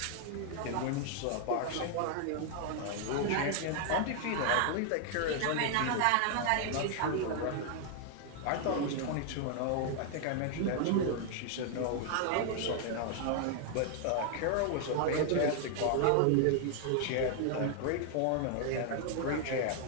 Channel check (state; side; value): different; both; correlation 0.00